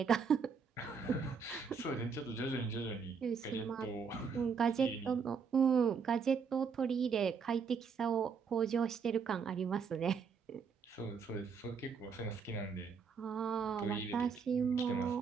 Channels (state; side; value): quieter; left; 5.8 dB